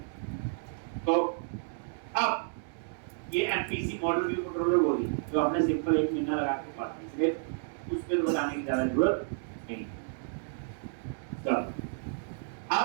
तो अब ये एमपीसी मॉडल व्यू कंट्रोलर बोली जो हमने सिंपल 1 महीना लगा के पढ़ा, इसलिए उस पे बताने की ज्यादा जरूरत नहीं।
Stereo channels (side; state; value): left; silent; digital silence